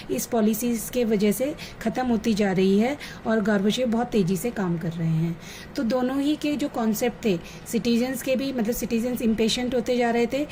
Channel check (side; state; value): both; identical; correlation 1.00